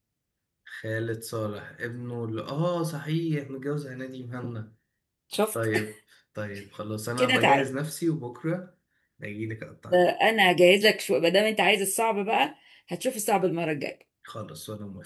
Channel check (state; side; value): identical; both; correlation 1.00